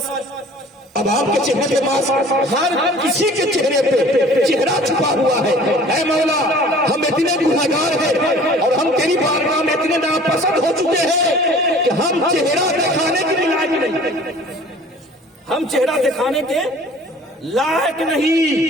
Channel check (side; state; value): both; normal; correlation 0.48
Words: اب آپ کے چہرے پہ ماسک، ہر کسی کے چہرے پہ چہرہ چھپا ہوا ہے۔ اے مولا ہم اتنے گنہگار ہیں اور ہم تیری بارگاہ میں اتنے ناپسند ہو چکے ہیں کہ ہم چہرہ دکھانے کے لائق نہیں، ہم چہرہ دکھانے کے لائق